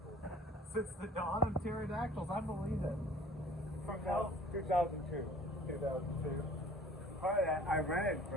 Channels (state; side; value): normal; both; correlation 0.49